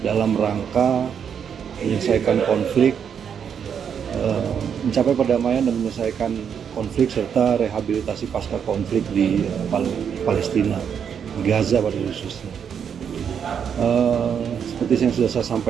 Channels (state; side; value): quieter; left; 7.7 dB